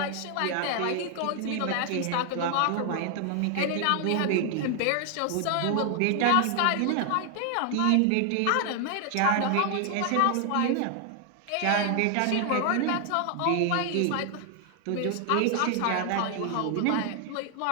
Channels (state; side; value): different; both; correlation 0.00